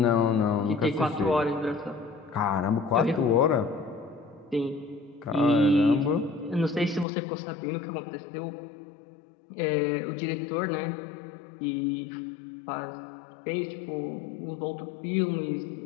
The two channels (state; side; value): drops out; right; at 7.1 s